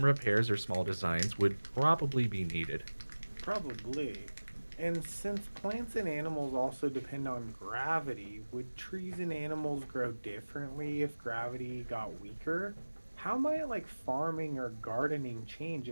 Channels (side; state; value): both; inverted; correlation -1.00